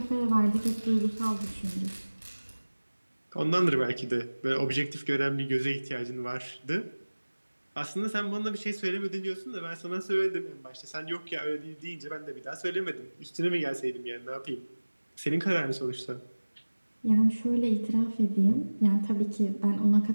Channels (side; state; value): both; inverted; correlation -1.00